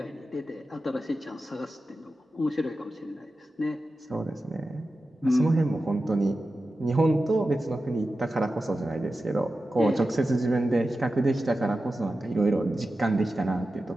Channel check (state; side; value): normal; both; correlation 0.93